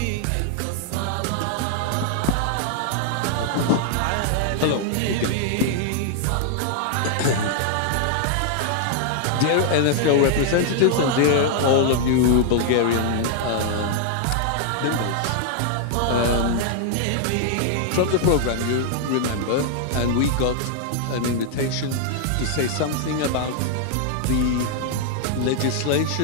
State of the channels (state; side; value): different; both; correlation 0.00